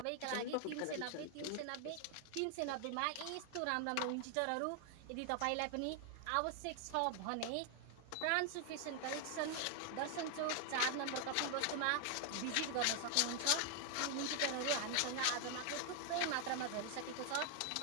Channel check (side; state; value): both; different; correlation 0.00